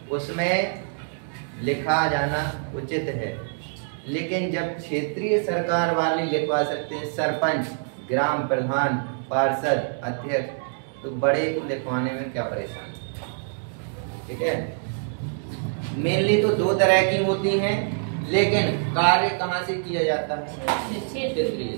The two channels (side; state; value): left; silent; digital silence